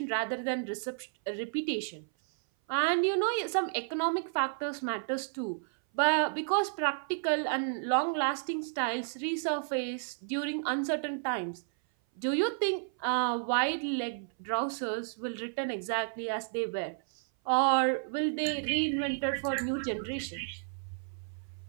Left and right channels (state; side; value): silent; left; 57 dB below the other